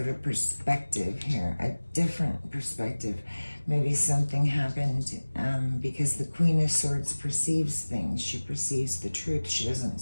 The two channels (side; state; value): both; inverted; correlation -1.00